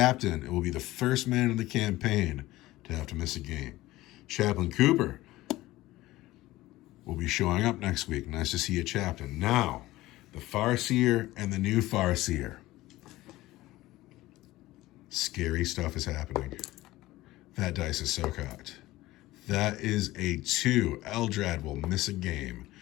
will be the first man in the campaign to have to miss a game. Chaplain Cooper will be showing up next week. Nice to see you, Chaplain. Now, the Farseer and the new Farseer. Scary stuff is happening. That dice is so cocked. That is a 2. Eldrad will miss a game.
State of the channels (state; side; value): quieter; right; 17.5 dB